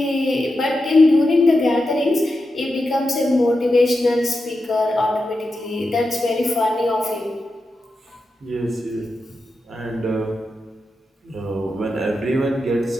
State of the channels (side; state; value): both; normal; correlation 0.89